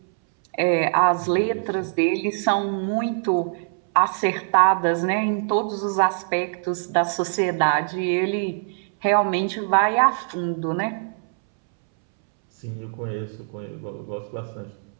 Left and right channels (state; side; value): silent; left; 63 dB below the other